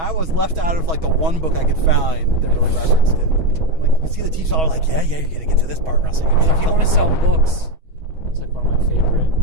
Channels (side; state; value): left; late; 6.2 ms